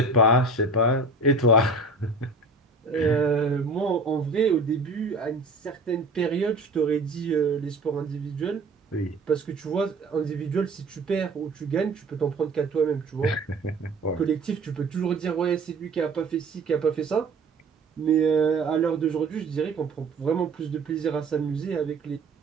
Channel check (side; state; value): left; quieter; 3.2 dB